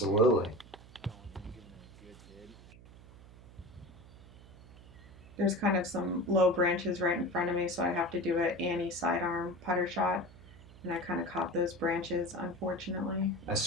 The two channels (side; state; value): right; noise; hum, 20 dB below the sound